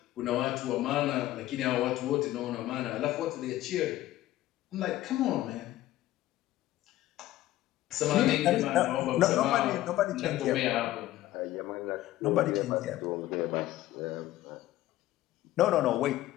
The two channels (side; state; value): right; quieter; 15.2 dB